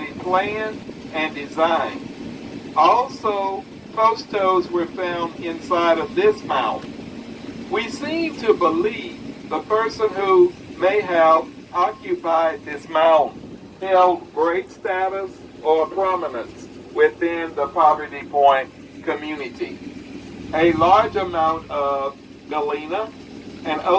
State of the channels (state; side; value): identical; both; correlation 1.00